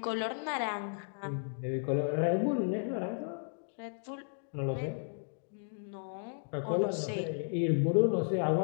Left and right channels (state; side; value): silent; right; digital silence